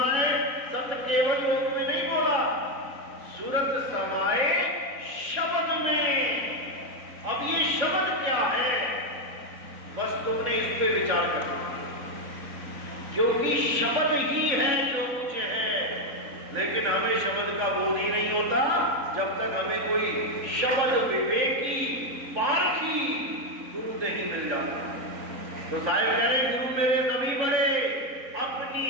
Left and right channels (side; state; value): left; late; 3.9 ms